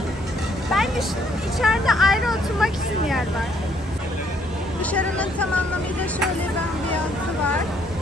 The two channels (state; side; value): normal; both; correlation 0.68